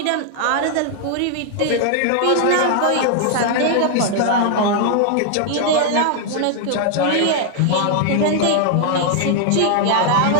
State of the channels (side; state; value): both; different; correlation 0.00